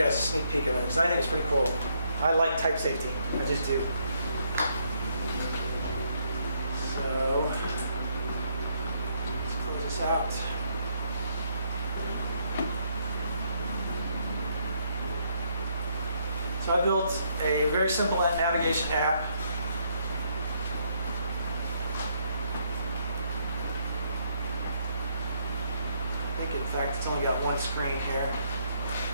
guys a sneak peek of it because I think it's pretty cool. I like type safety. I just do. So let's close this out. So I built a very simple navigation app. I think, in fact, it's only got one screen here.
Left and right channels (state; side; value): inverted; both; correlation -0.72